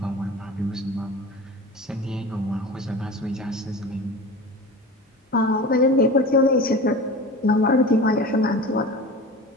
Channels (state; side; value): normal; both; correlation 0.33